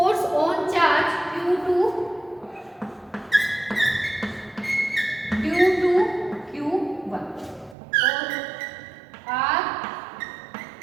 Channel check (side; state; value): left; drops out; at 7.8 s